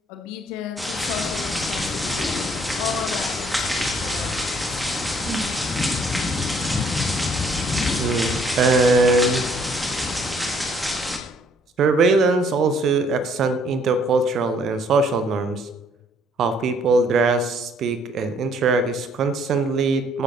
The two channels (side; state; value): both; normal; correlation 0.63